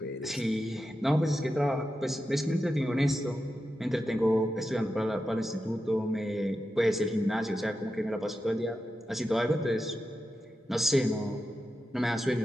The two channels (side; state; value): both; normal; correlation 0.90